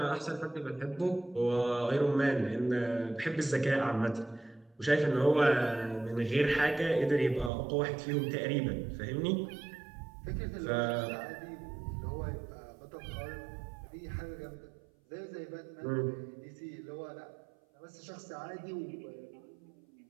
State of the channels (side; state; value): left; drops out; at 7.5 s